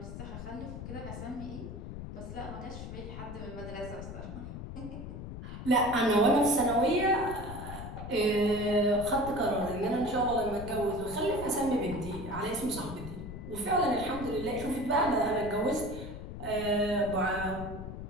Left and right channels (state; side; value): noise; left; rumble, 9 dB below the sound